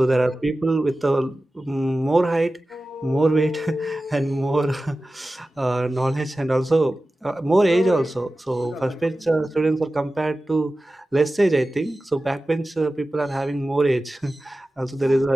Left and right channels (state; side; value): normal; both; correlation 0.95